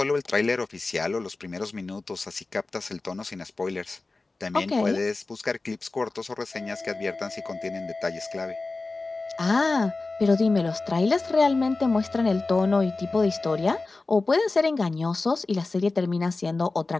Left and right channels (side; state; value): right; quieter; 3.5 dB